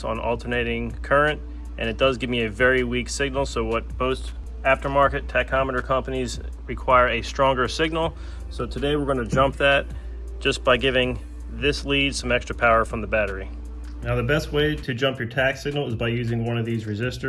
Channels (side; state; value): both; identical; correlation 1.00